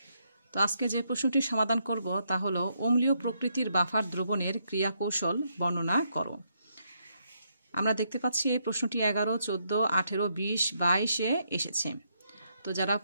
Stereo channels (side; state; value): both; inverted; correlation -0.77